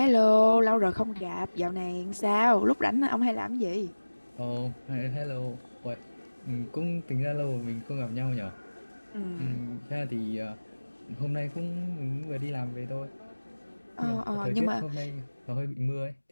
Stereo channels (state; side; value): inverted; both; correlation -1.00